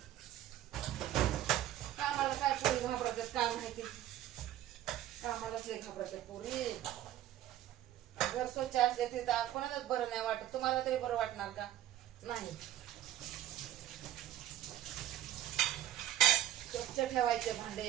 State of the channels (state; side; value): quieter; left; 12.5 dB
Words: कामाला काय पोरी घाबरतात काय माहिती, कामालाच लय घाबरतात पोरी. घर स्वच्छ असले ते कोणालाच बरं नाही वाटत. तुम्हाला तरी बरं वाटणार का? नाही. स्वच्छ ठेवायचे